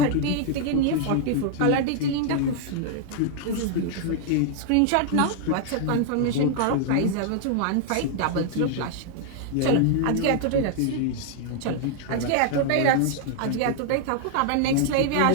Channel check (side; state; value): both; different; correlation 0.00